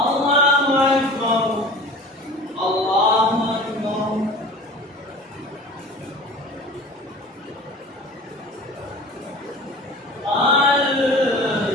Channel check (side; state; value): both; normal; correlation 0.40